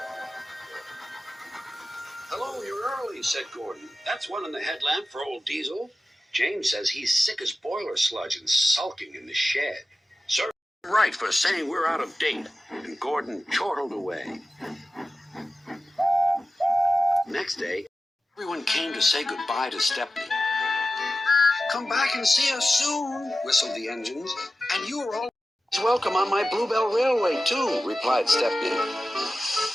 "Hello, you're early," said Gordon. "That's one in the headlamp for old Diesel. James says he's sick as boiler sludge and sulking in the shed." "Sir, right for saying we're out of date." And Gordon chortled away. Next day, everyone came to say goodbye to Stepney. "Come back and see us soon," whistled the engines. "And you are always welcome on my Bluebell Railway, too," replied Stepney.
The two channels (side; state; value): both; normal; correlation 0.94